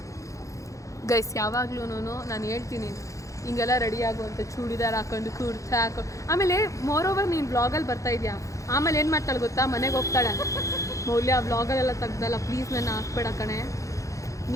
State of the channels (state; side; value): late; right; 0.15 ms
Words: ಗೈಸ್ ಯಾವಾಗ್ಲೂ ನಾನು ಹೇಳ್ತೀನಿ ಹಿಂಗೆಲ್ಲ ರೆಡಿ ಆಗುವಂಥ ಚೂಡಿದಾರ್ ಹಾಕೊಂಡು ಕುರ್ತಾ ಹಾಕೊಂಡು. ಆಮೇಲೆ ಮೋರೋವರ್ ನೀನು ಬ್ಲಾಗಲ್ಲಿ ಬರ್ತಾ ಇದೆಯಾ, ಆಮೇಲೆ ಏನು ಮಾಡ್ತಾಳೆ ಗೊತ್ತಾ, ಮನೆಗೆ ಹೋಗ್ತಾಳೆ, ಮೌಲ್ಯ ವ್ಲಾಗಲ್ಲೆಲ್ಲ ತೆಗ್ದಲ್ಲ ಪ್ಲೀಸ್ ನನ್ನ ಹಾಕ್ಬೇಡ ಕಣೆ,